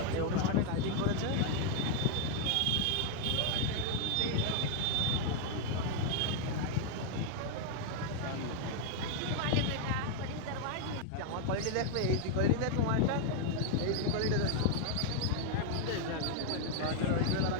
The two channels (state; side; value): different; both; correlation 0.00